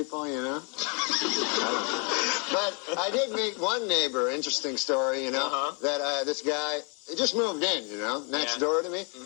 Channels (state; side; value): quieter; right; 35.8 dB